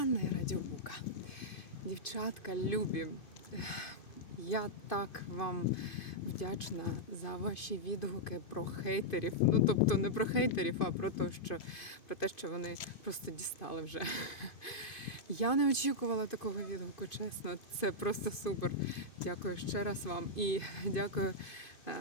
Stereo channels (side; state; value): right; late; 2.5 ms